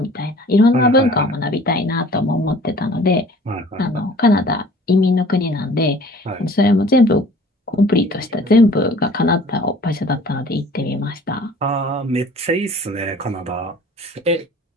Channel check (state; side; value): normal; both; correlation 0.49